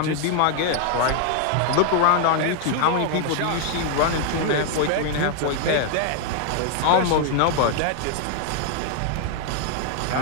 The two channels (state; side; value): different; both; correlation 0.00